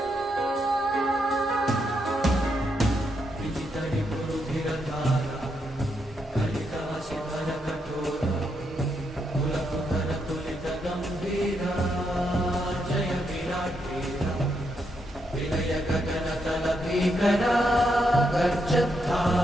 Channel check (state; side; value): normal; both; correlation 0.80